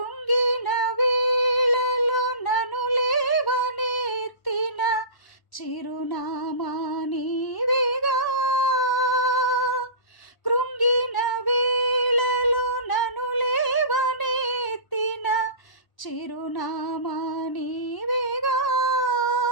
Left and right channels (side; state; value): right; late; 1.0 ms